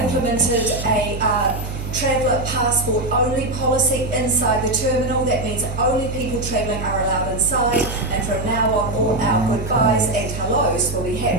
a traveller passport only policy inside the terminal. That means only people travelling are allowed inside, and from now on all our goodbyes and hellos will be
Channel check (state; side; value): noise; right; hum, 7 dB below the sound